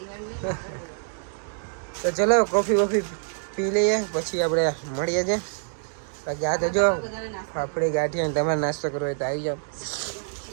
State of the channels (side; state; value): left; silent; digital silence